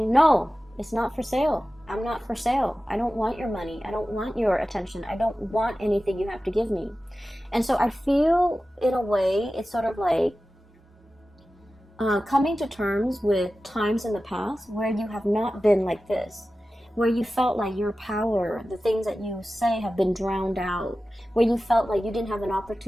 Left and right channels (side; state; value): both; normal; correlation 0.95